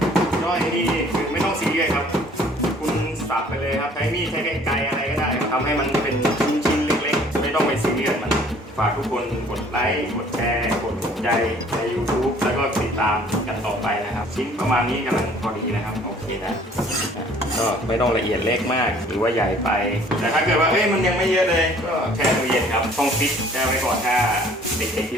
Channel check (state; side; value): normal; both; correlation 0.55